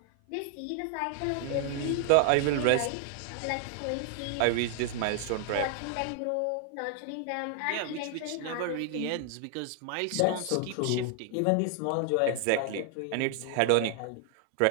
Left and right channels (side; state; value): both; different; correlation 0.00